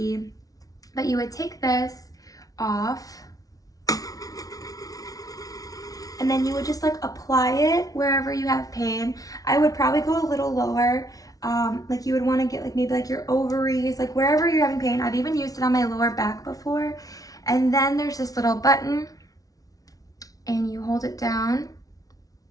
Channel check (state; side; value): late; right; 0.18 ms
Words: But you would take this off, and then you would just like apply it wherever you have pain. I would probably go a little lower. Like you would want to get like maybe like your ovaries, like wherever you're having pain. I've even used it on my lower back before. And then there's this little button, and you hold it down,